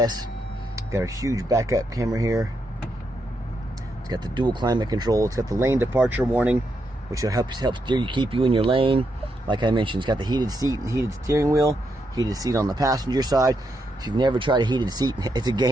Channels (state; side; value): normal; both; correlation 0.81